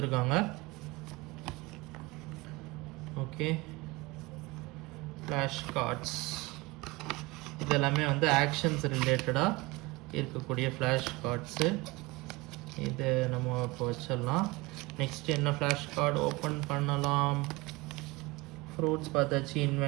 Okay, flash cards இதெல்லாமே வந்து actions ரிலேட்டடாக இருக்கக்கூடிய flash cards. இது நம்ம இப்போ வச்சிடலாம். நெக்ஸ்ட் என்ன ஃப்ளாஷ் கார்டு ஓப்பன் பண்ணலாம்? ஃப்ரூட்ஸ் பார்த்தாச்சு.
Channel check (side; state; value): left; quieter; 23.2 dB